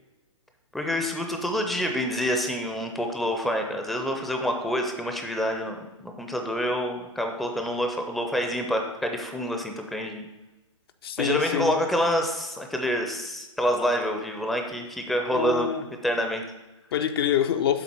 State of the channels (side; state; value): both; normal; correlation 0.49